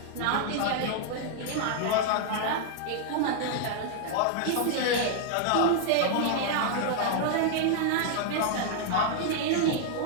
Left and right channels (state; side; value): different; both; correlation 0.00